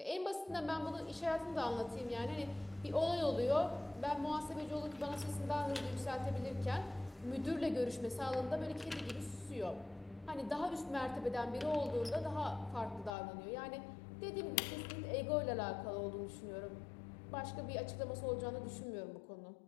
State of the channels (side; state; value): right; drops out; at 13.2 s